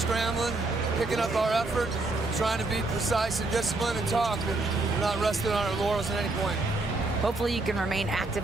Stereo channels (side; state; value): left; quieter; 3.2 dB